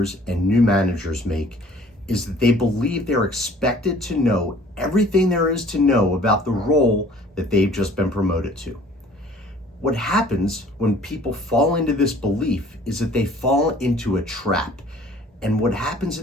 and new managers make is that they believe they're expected to know everything there is to know about the role that they've just been promoted to. What happens when people fall into this belief is that they fall into a trap. And what happens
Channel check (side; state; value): both; normal; correlation 0.53